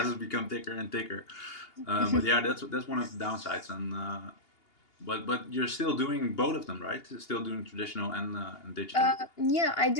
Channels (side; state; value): right; late; 2.8 ms